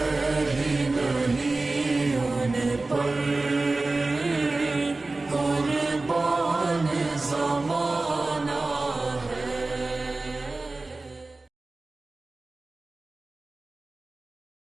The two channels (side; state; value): left; quieter; 3.3 dB